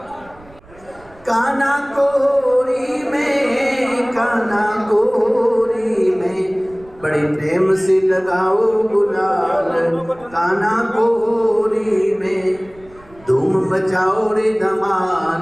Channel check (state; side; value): noise; right; rumble, 25 dB below the sound